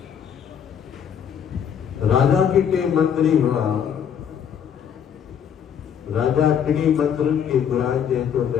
राजा के टे मंत्री हुआ राजा टिनी मंत्रन के घुराए जे तो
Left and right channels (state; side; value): quieter; right; 8.2 dB